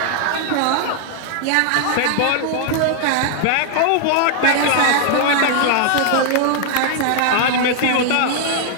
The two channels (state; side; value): different; both; correlation 0.00